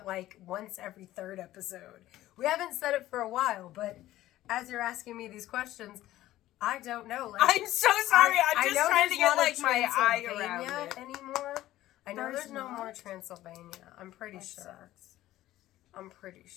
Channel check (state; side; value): quieter; right; 14.9 dB